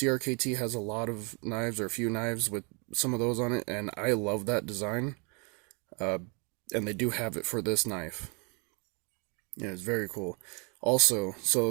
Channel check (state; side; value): quieter; left; 33.5 dB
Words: has a lot of knives, or a few knives with some of those on it, and I love that design. And they do have it for this knife. Yeah, it's very cool. Also, so